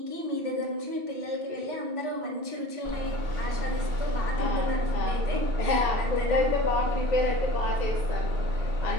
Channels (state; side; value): late; left; 2.7 ms